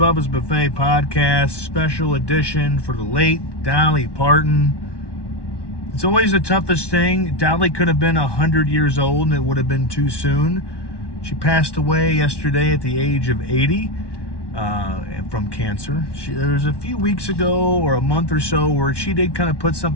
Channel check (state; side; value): late; right; 1.1 ms